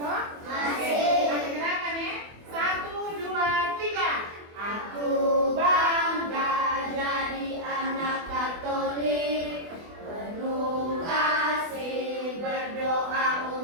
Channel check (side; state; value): left; late; 24 ms